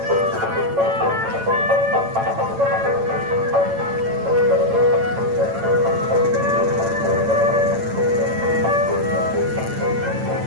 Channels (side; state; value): left; late; 8.9 ms